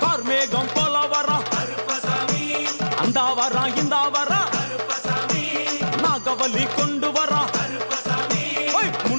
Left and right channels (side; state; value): both; inverted; correlation -1.00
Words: கார்மேகம் போல வரா கருப்பசாமி அந்த வரா இந்த வரா கருப்பசாமி நாகவலி கொண்டு வரா கருப்பசாமி